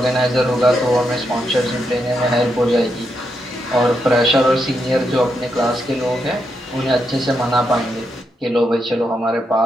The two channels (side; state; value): both; normal; correlation 0.82